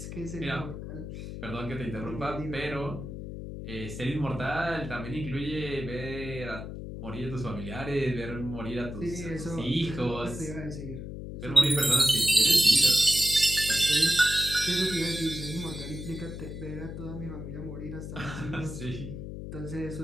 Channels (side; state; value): left; noise; hum, 8 dB below the sound